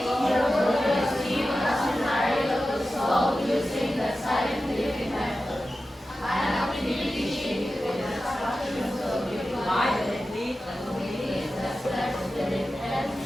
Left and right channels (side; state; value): both; normal; correlation 0.93